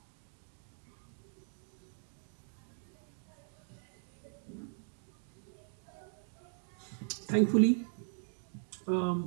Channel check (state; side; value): silent; left; digital silence